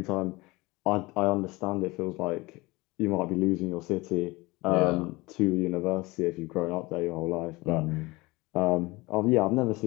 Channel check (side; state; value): right; quieter; 22.5 dB